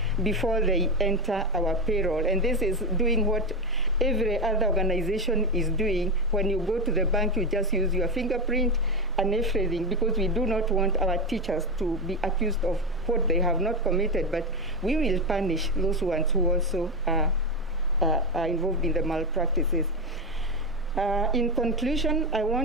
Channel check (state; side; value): normal; both; correlation 0.13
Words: before they enter our payroll. And this is doing what every other organization is doing. When you go to the bank, you just use your fingerprint and everything, because we do not want our teachers to be accused of what they have not committed, but we will punish those ones who also are involved in the malpractices. In conclusion, I